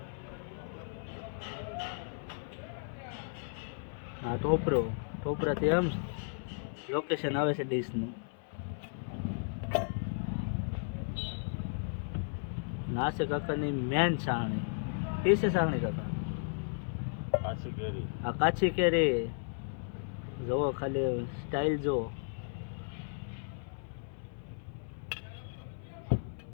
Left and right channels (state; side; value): silent; right; 55 dB below the other